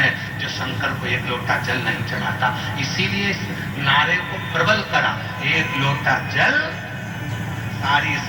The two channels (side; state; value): both; identical; correlation 1.00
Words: जो शंकर को 1 लोटा जल नहीं चढ़ाता। इसीलिए इस नारे को प्रबल करा, 1 लोटा जल सारी